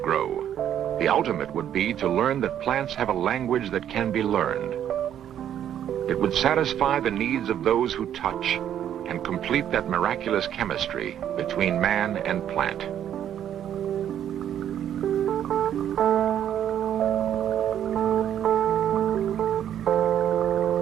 grow, the ultimate would be to learn that plants have a language that can be learned. It would satisfy the needs of those who touch and complete that miraculous chemistry between man and plant.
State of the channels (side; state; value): left; quieter; 10.2 dB